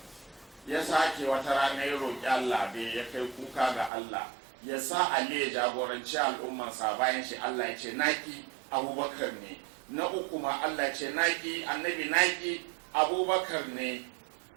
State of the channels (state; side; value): drops out; left; at 3.9 s